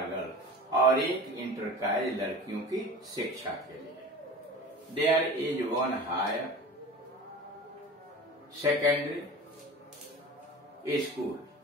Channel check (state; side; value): normal; both; correlation 0.36